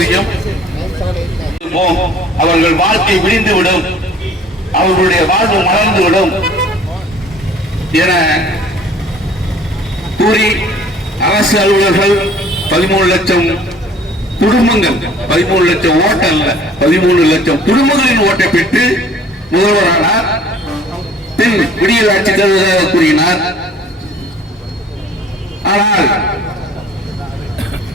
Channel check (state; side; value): normal; both; correlation 0.52